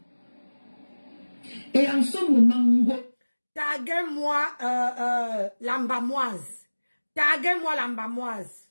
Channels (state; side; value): inverted; both; correlation -1.00